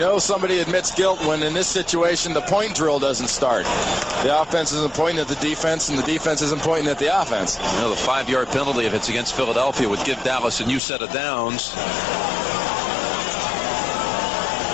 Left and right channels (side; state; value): right; drops out; at 10.8 s